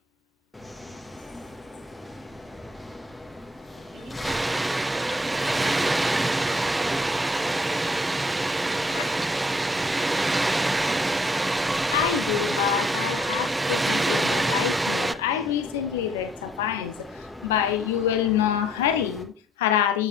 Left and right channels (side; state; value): both; normal; correlation 0.63